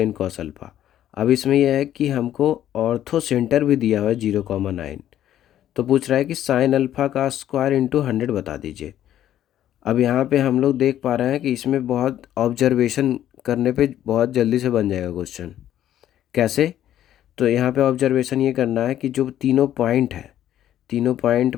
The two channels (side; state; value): right; quieter; 11.7 dB